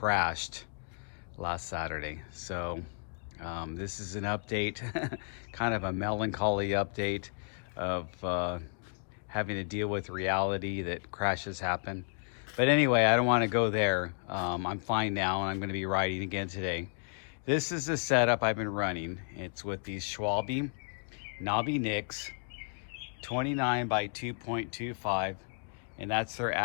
last Saturday. So this is an update, kind of a melancholy update of having to deal with reality that crashes happen. But anyway, I don't want to go there. I'm fine now, and I'm going to be riding again today. This is the setup I've been running. It's with these Schwalbe Nobby Nics, 29 by 2.25, and that's their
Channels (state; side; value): silent; right; 56 dB below the other